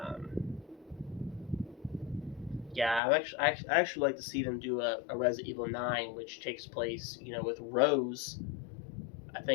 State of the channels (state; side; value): drops out; right; at 3.0 s